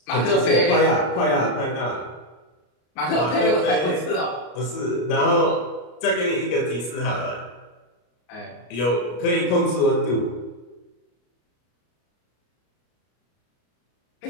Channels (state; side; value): late; right; 33 ms